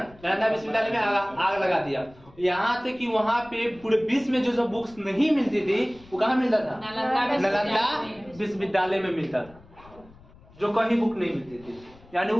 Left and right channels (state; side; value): noise; left; rumble, 24 dB below the sound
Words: नालंदा विश्वविद्यालय में आग लगा दिया। यहाँ तक कि वहाँ पे पूरे विश्व में जो बुक्स नहीं मिलती थी वो कहाँ मिलता था? नालंदा विश्वविद्यालय में मिलता था, जो कहीं बुक नहीं मिलती थी। यानी